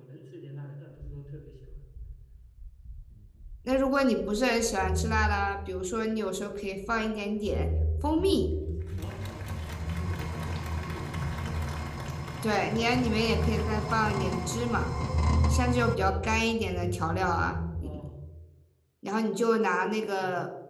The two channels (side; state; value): both; identical; correlation 1.00